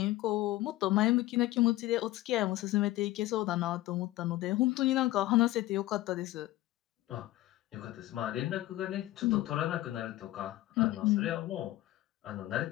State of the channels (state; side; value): quieter; right; 16.8 dB